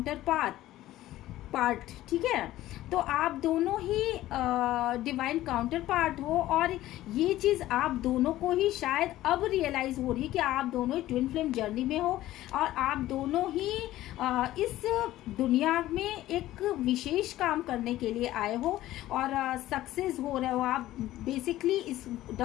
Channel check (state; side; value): quieter; right; 15.0 dB